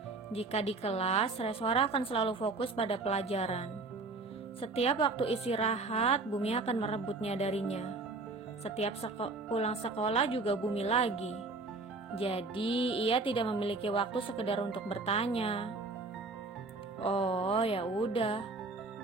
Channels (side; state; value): left; quieter; 3.7 dB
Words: Jika di kelas, Reswara akan selalu fokus pada pelajaran. Setiap waktu istirahat, Bumi akan merebutnya darinya. Setiap pulang sekolah juga Bumi lagi. Jadi, ia tidak memiliki waktu sekedar untuk bertanya. Oh, ya udah.